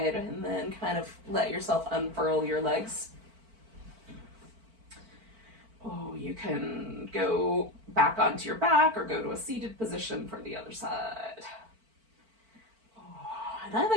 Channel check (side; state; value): left; late; 4.5 ms